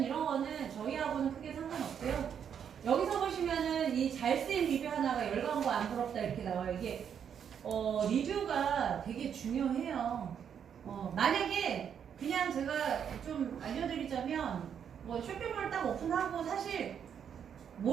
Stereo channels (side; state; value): left; quieter; 8.1 dB